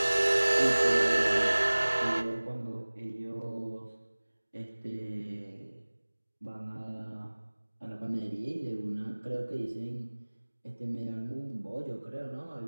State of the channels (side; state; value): both; inverted; correlation -1.00